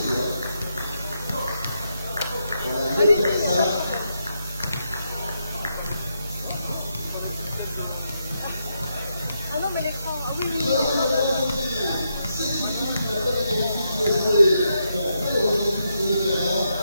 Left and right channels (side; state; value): both; inverted; correlation -0.82